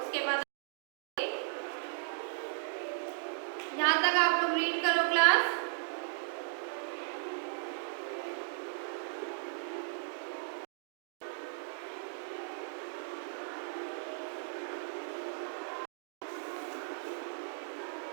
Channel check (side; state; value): left; silent; digital silence